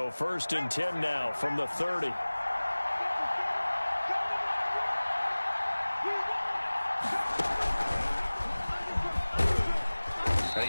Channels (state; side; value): inverted; both; correlation -1.00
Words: 1st and 10 now from the 30. And